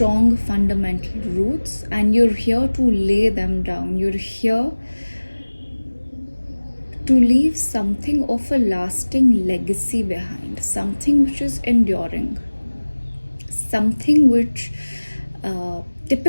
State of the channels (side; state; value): both; inverted; correlation -1.00